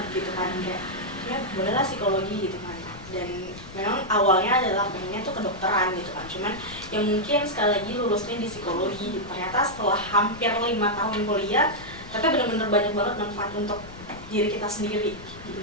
gitu kan, kayak ya bolehlah psikologi gitu kan. Dan memang awalnya adalah pengennya tuh kedokteran gitu kan, cuman yang mungkin sekali lagi lulusnya di psikologi, ternyata setelah hampir 5 tahun kuliah ternyata benar-benar banyak banget manfaat untuk diri kita sendiri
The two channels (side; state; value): left; noise; rumble, 16 dB below the sound